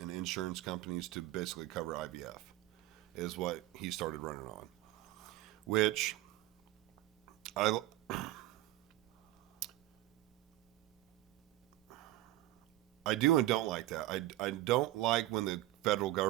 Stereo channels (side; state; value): left; quieter; 16.2 dB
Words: and insurance companies to basically cover IVF. is what he started running on, which I do and don't like that. I don't like when the federal